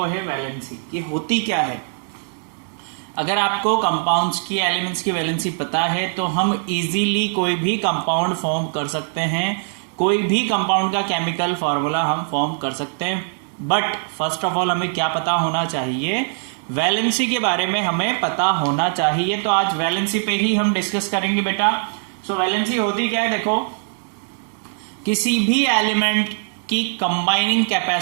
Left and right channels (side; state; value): left; silent; digital silence